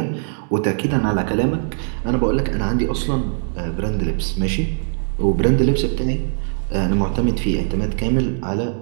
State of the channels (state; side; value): silent; left; 65 dB below the other